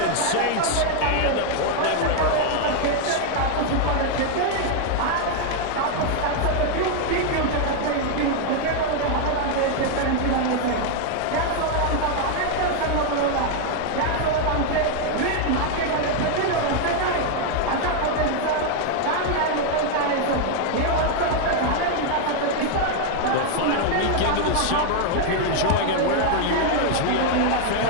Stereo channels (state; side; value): different; both; correlation 0.00